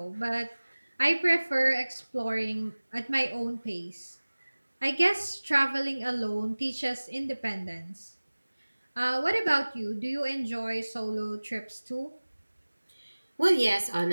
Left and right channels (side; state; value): both; inverted; correlation -1.00